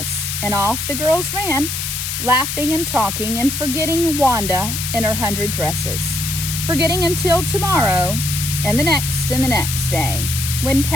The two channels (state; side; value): noise; left; hiss, 4 dB below the sound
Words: and off the girls ran, laughing and talking and forgetting Wanda and her 100 dresses, forgetting until tomorrow and the next day, when